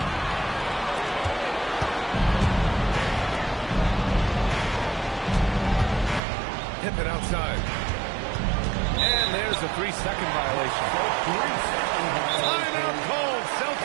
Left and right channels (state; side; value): drops out; left; at 6.2 s